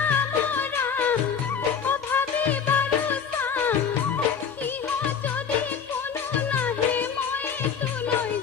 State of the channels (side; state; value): right; quieter; 6.9 dB